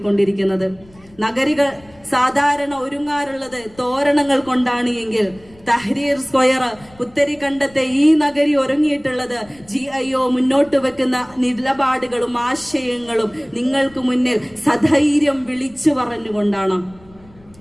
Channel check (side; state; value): left; noise; rumble, 26 dB below the sound